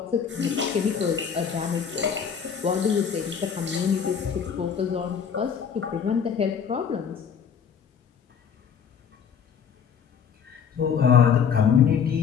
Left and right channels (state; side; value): quieter; right; 7.2 dB